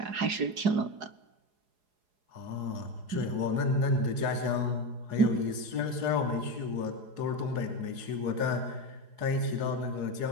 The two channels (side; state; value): left; late; 4.8 ms